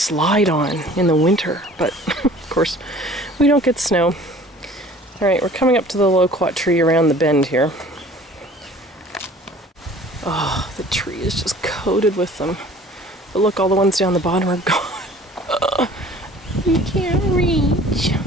on in the winter? But of course, we don't get snow. Alright, we're coming up to the loquat tree around the bend here. Oh, the tree is just coated with them. But look, all the ones down the bottom are gone. You can't reach.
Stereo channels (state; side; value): normal; both; correlation 0.49